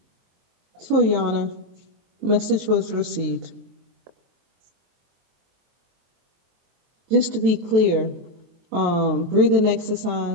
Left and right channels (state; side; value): late; left; 22 ms